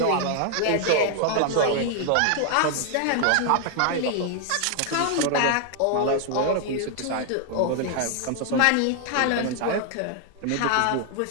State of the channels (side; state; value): both; different; correlation 0.00